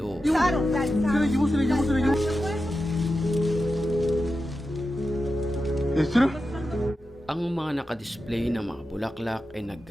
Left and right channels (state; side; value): normal; both; correlation 0.91